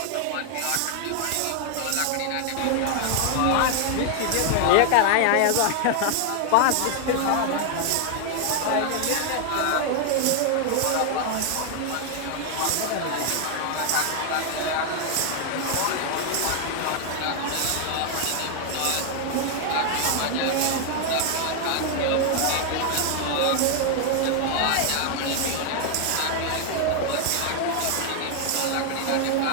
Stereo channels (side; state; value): both; different; correlation 0.00